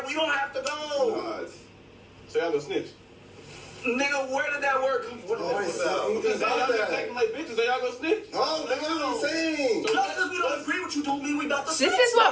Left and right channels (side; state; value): both; identical; correlation 1.00